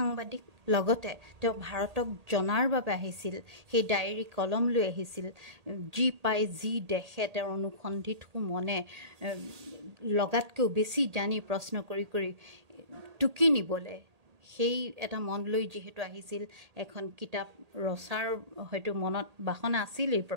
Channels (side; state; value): left; late; 1.8 ms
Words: লগতে তেওঁ ভাৰতক জনাৰ বাবে আহিছিল, সেই ডায়েৰী কলম লৈ আহিছিল, যি পাই যি দেখে তেওঁৰ অনুসন্ধিৎসু মনে লগাতকৈও বেছি জানি প্ৰশ্ন কৰি কৰি টুকি নিবলৈ সেই এটা মন লৈ যিহেতু আহিছিল, এখন কিতাপ ৰচাৰ হয়তো মনত বাসনা আছিলেই